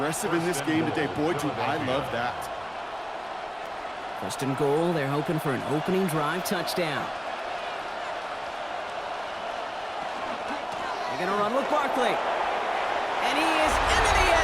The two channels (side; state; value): both; identical; correlation 1.00